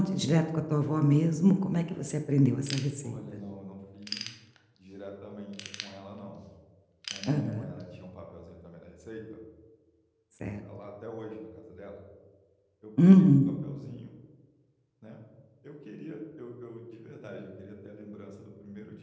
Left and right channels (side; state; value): both; identical; correlation 1.00